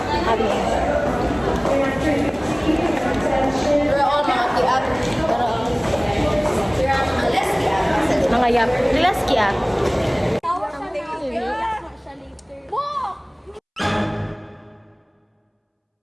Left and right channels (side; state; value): both; identical; correlation 1.00